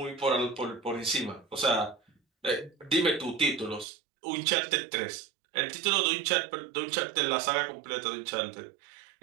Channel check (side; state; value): left; drops out; at 3.9 s